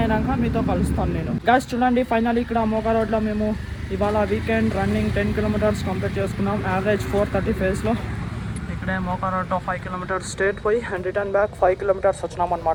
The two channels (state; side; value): identical; both; correlation 1.00